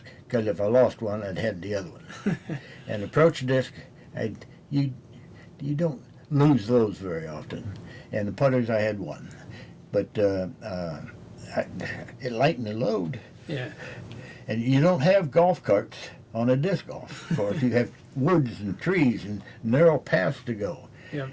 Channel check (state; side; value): identical; both; correlation 1.00